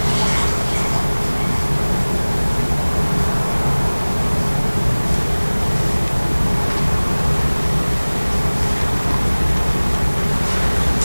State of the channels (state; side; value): inverted; both; correlation -1.00